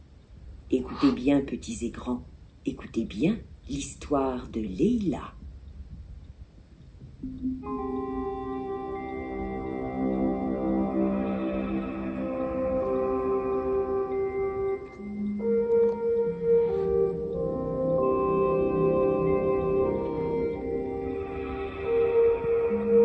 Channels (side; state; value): both; identical; correlation 1.00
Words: Écoutez bien, petits et grands, écoutez bien l'histoire de Leïla.